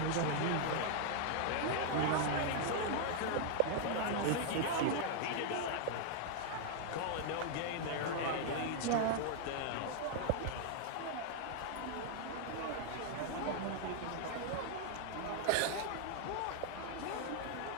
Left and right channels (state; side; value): different; both; correlation 0.00